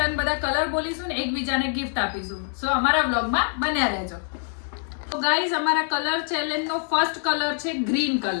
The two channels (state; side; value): silent; right; 56 dB below the other